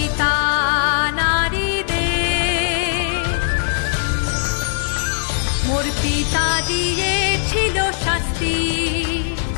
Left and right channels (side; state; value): right; silent; digital silence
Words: নারীদের। মোর পিতা দিয়েছিল শাস্তি,